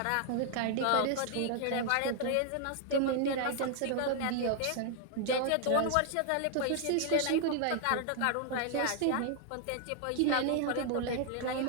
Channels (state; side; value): different; both; correlation 0.00